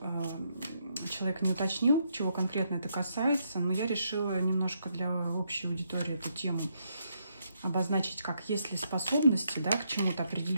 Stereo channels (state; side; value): inverted; both; correlation -0.77